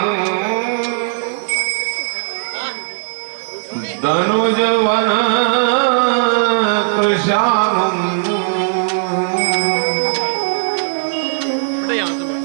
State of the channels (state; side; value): silent; left; digital silence